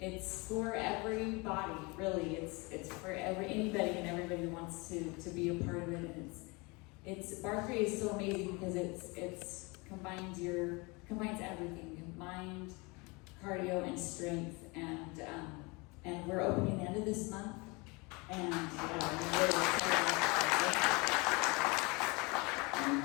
for everybody, really. It's for anybody and everybody who wants to be a part of it. And it's Bar 3 is so amazing because it's combines everything, mind, cardio, and strength. And we're opening the end of this month. And I'm really excited.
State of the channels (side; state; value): right; quieter; 27.3 dB